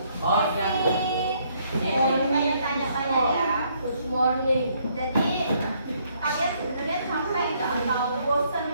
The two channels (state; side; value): inverted; both; correlation -0.69